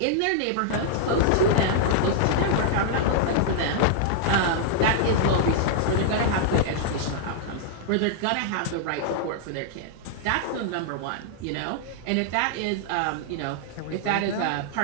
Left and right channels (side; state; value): both; different; correlation -0.01